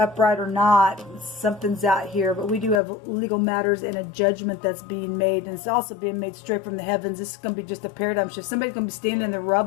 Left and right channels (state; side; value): drops out; right; at 2.8 s